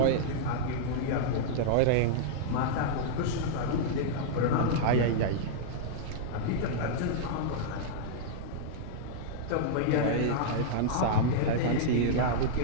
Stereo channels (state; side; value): different; both; correlation -0.02